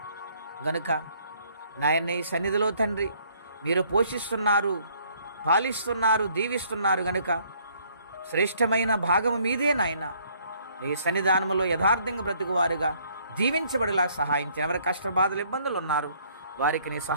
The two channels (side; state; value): both; inverted; correlation -0.63